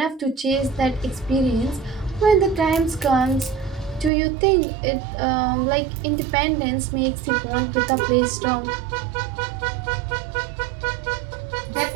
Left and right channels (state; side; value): drops out; left; at 4.1 s